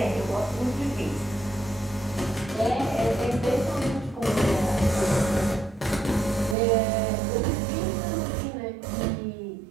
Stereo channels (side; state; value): left; drops out; at 6.6 s